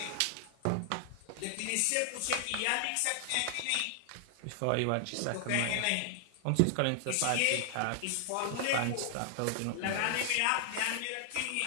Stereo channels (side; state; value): both; different; correlation 0.00